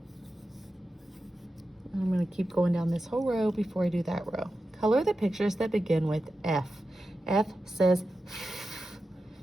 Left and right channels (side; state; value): both; normal; correlation 0.92